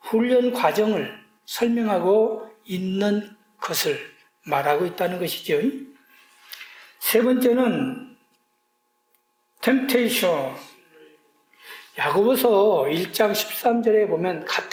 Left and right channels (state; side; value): identical; both; correlation 1.00